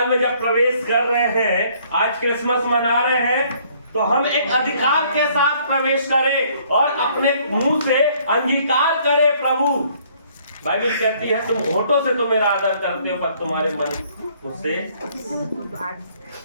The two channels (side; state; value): both; inverted; correlation -0.62